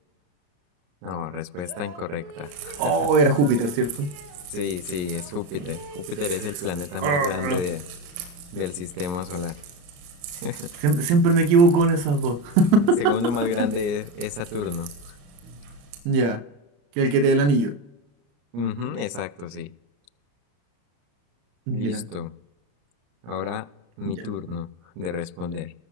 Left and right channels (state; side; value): late; left; 34 ms